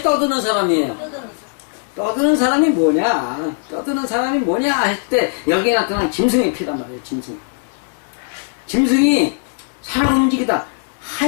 떠드는 사람이에요? 떠드는 사람이 뭐냐? 떠드는 사람이 뭐냐? 했을 때 여기에 나타난 짐승의 피란 말이에요. 짐승이 살아 움직이다.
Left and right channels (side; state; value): right; silent; digital silence